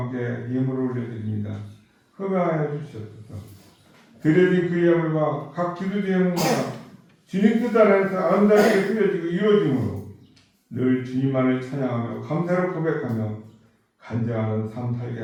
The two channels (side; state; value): both; identical; correlation 1.00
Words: 예물을 올려드립니다. 흠양하여 주시옵소서. 드려진 그 예물과 각 기도 제목마다 주님 뜻 안에서 아름답게 쓰여지고 이루어짐으로 늘 주님만을 찬양하며 감사를 고백하며 간절한 삶 살게